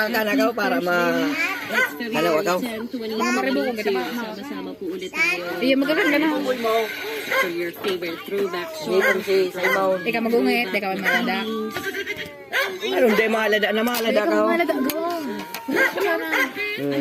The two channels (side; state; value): both; identical; correlation 1.00